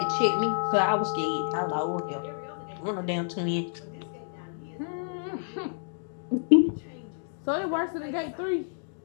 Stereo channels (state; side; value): silent; right; digital silence